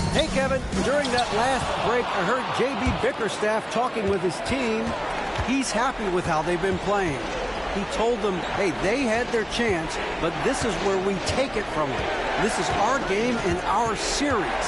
Hey, Kevin, during that last break, I heard J.B. Bickerstaff talking with his team. He's happy with how they've been playing. He told them, hey, they had their chance, but this is where we take it from them. This is our game and our series.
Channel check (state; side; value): identical; both; correlation 1.00